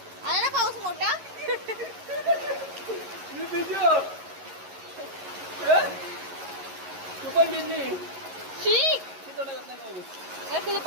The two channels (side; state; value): left; late; 11 ms